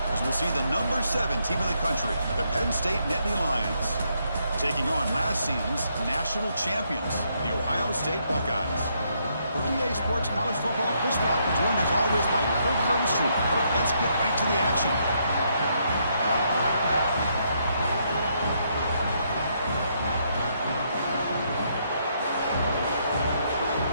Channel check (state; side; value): inverted; both; correlation -0.75